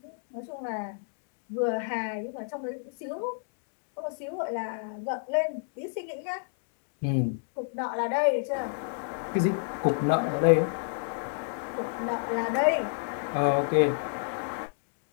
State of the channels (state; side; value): silent; right; digital silence